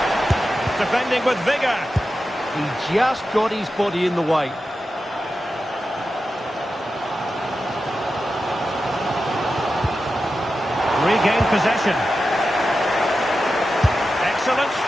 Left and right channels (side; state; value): both; normal; correlation 0.91